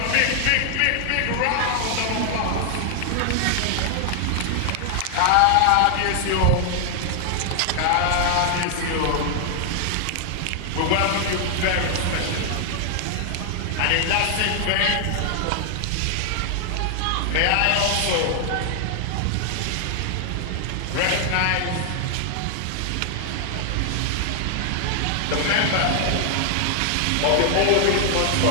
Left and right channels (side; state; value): both; different; correlation 0.00